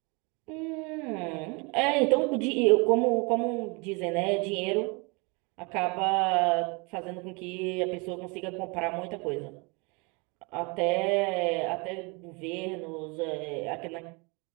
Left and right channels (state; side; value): quieter; left; 29.8 dB